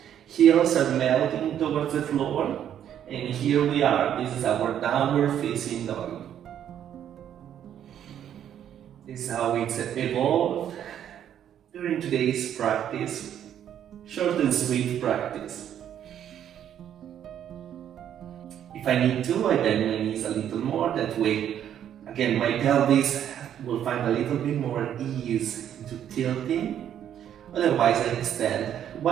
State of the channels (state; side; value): quieter; left; 10.0 dB